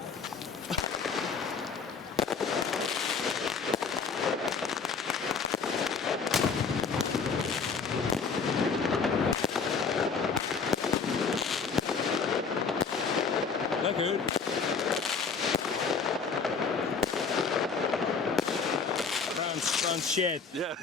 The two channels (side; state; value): right; quieter; 5.3 dB